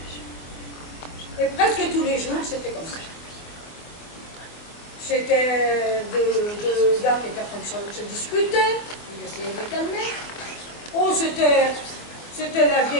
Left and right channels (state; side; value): late; right; 24 ms